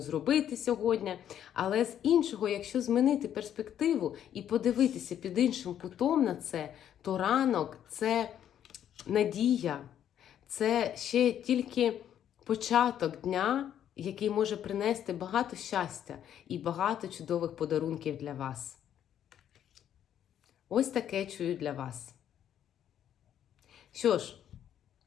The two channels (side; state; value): right; quieter; 10.1 dB